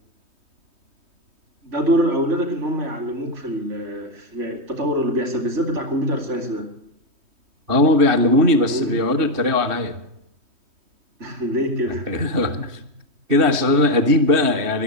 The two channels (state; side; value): late; left; 3.2 ms